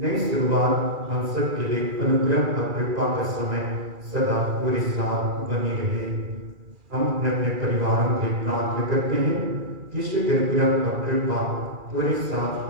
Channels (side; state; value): left; late; 2.4 ms